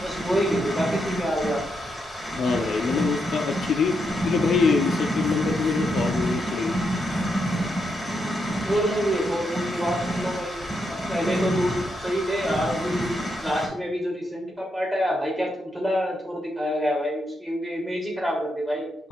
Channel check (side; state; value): both; normal; correlation 0.81